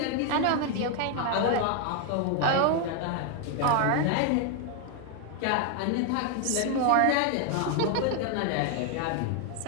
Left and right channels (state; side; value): different; both; correlation 0.01